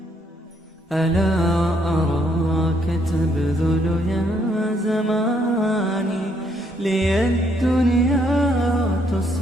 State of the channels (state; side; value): normal; both; correlation 0.71